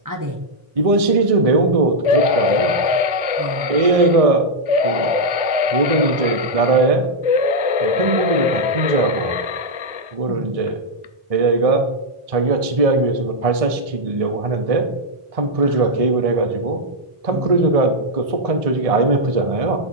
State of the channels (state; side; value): late; left; 1.6 ms